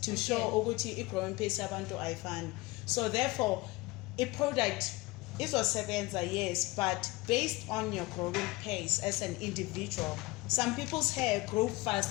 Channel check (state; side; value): quieter; right; 21.7 dB